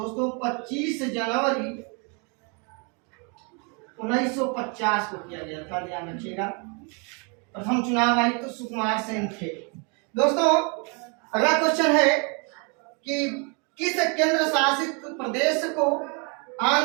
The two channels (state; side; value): quieter; left; 34.5 dB